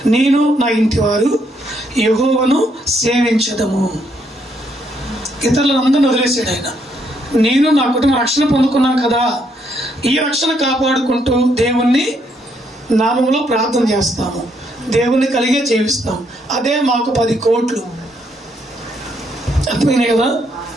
నేను నా ఇంటి వారు యెహోవాను సేవించదము. ఇతరులందరిని వదిలేసాడు ఆయన. నేను నా కుటుంబం రక్షణ పొందుకున్నాను కదా, ఈ రక్షణ కాపాడుకుంటూ దేవుణ్ణి నామంలో ప్రార్థన చేస్తాము, దేవుణ్ణి కలిగే జీవిస్తాం. అదే మాకు 10 కోట్లు. అర్థమైనాయి కదా?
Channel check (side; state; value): both; normal; correlation 0.73